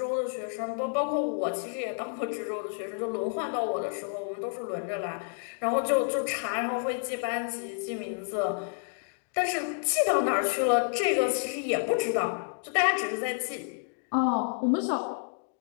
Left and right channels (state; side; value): silent; right; digital silence